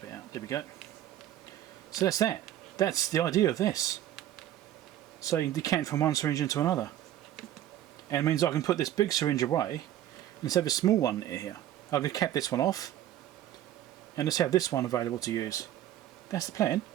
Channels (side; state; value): left; quieter; 12.2 dB